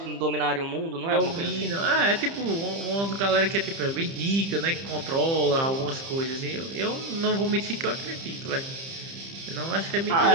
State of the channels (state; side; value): late; left; 30 ms